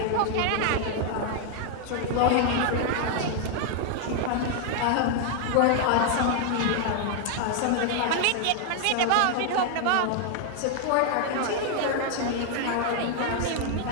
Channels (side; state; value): both; different; correlation 0.00